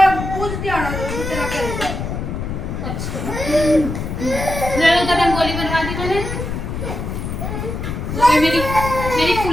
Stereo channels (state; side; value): noise; left; rumble, 5 dB below the sound